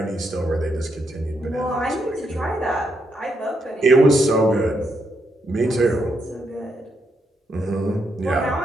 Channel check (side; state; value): both; normal; correlation 0.79